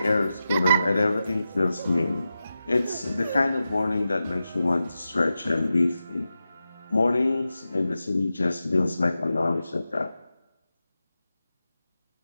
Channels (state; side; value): inverted; both; correlation -0.92